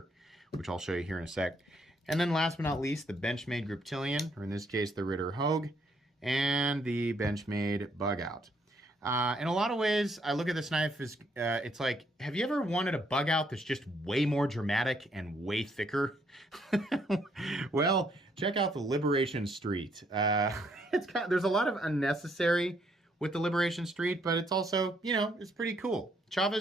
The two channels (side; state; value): both; normal; correlation 0.70